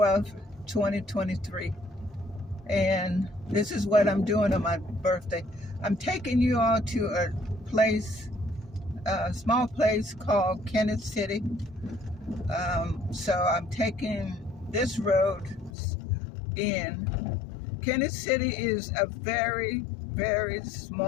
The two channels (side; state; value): right; drops out; at 15.7 s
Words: 2023. And this is what I'm doing on my birthday. I'm taking you all to a small place called Kenneth City. So I'm taking this road in. Kenneth City is a very, very